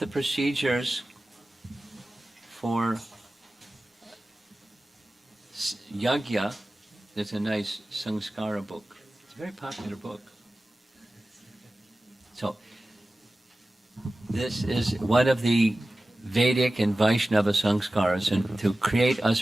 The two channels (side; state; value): both; normal; correlation 0.96